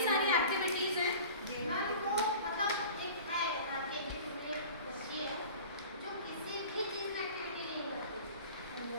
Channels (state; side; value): inverted; both; correlation -0.41